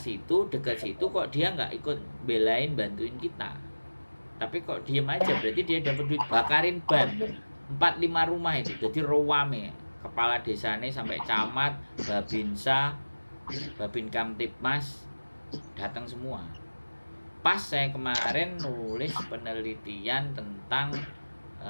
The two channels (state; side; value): inverted; both; correlation -1.00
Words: situ, dekat situ kok dia nggak ikut belain bantuin kita. Tapi kok diem aja, berarti dia dapat duit, bakarin ban 4-5 rumah itu. Jadi rowame. Kepala desanya sampai camat, Babinsa, Babin Kamtipmas datang semua. Pas saya kemarin nulis penelitian tentang